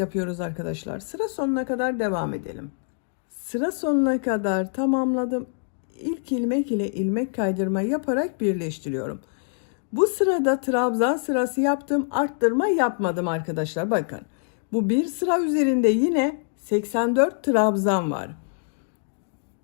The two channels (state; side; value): silent; right; digital silence